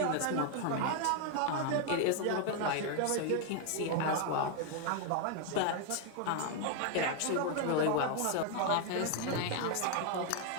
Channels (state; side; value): different; both; correlation 0.01